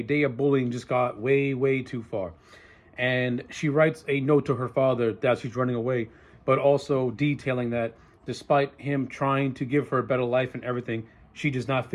day of bullying just got way too far. And she writes a note to her father that she's running away, but also detailing that despite him trying to give her a better life and everything, she does not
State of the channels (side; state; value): both; identical; correlation 1.00